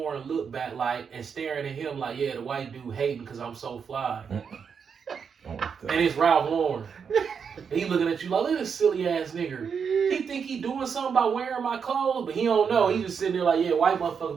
looked back like, and staring at him like, yeah, the white dude hating because I'm so fly. Oh, And it's Ralph Lauren. And he looking at you like, look at this silly ass nigga. He think he doing something by wearing my clothes, but he don't know. He just sitting there like, yeah, white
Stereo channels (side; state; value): left; quieter; 6.5 dB